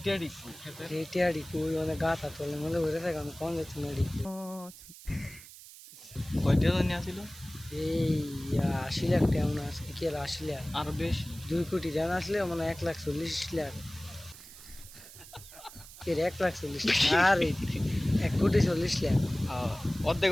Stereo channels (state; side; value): noise; right; hiss, 17 dB below the sound